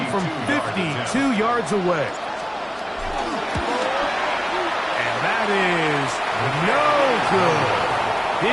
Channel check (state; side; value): identical; both; correlation 1.00